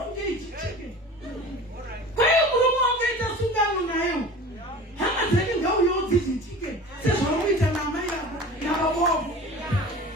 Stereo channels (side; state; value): both; normal; correlation 0.38